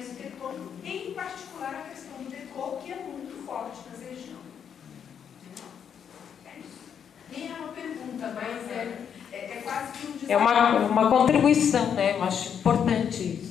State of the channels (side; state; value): right; quieter; 8.0 dB